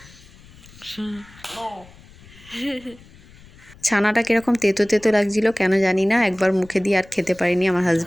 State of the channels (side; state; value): left; noise; rumble, 23 dB below the sound